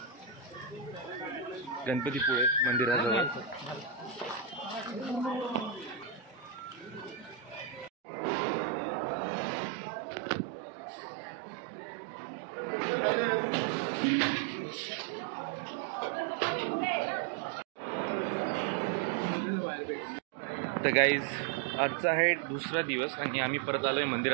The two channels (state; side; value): drops out; left; at 7.9 s